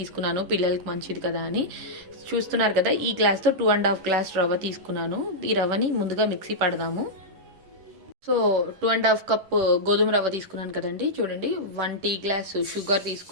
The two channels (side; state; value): left; late; 11 ms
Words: పిల్లలకి మంచిది కదా అని. చూస్తున్నారు కదా, ఈ గ్లాస్తో 2.5 గ్లాస్ రవ్వ తీసుకున్నాను. ఈ రవ్వని ముందుగా మిక్సీ పడదాము. సో 2.5 కప్ గోధుమ రవ్వ తీసుకున్నాను కదండి. చూడండి, 1 టీ గ్లాస్ షుగర్